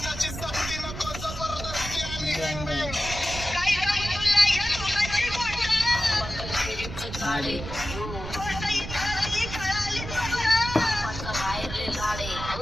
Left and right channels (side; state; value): right; noise; rumble, 9 dB below the sound